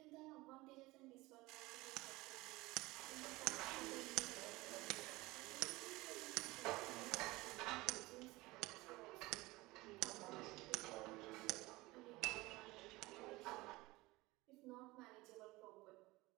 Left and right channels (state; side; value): quieter; left; 21.1 dB